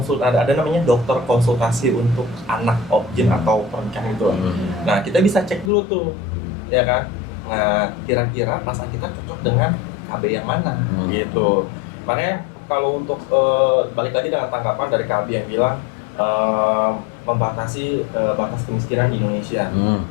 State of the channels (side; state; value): right; drops out; at 5.7 s